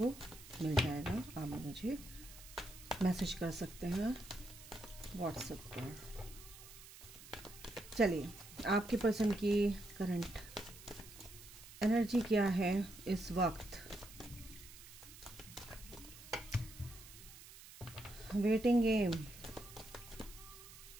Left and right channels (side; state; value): right; noise; hiss, 17 dB below the sound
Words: मिल जाएगा, आप मुझे मैसेज कर सकते हैं व्हाट्सएप पर। चलिए, आपके पर्सन की करंट एनर्जी क्या है इस वक्त। वेटिंग गेम,